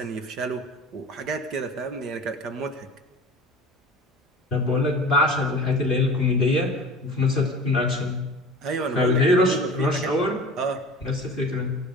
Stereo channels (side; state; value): both; normal; correlation 0.38